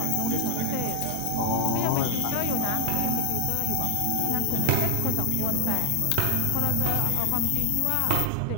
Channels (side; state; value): both; different; correlation 0.01